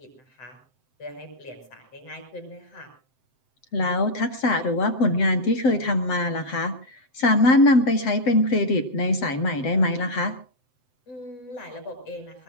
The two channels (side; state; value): right; late; 7.7 ms